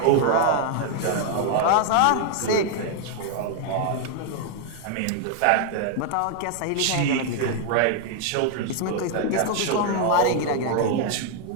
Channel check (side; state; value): both; different; correlation 0.00